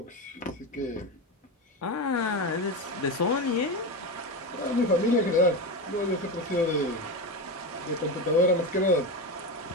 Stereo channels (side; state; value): both; normal; correlation 0.18